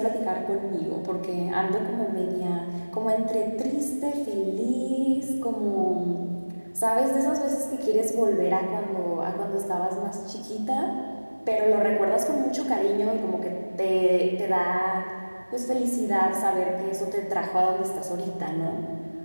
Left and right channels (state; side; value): inverted; both; correlation -1.00